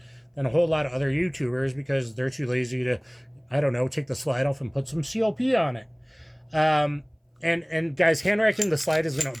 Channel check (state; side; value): identical; both; correlation 1.00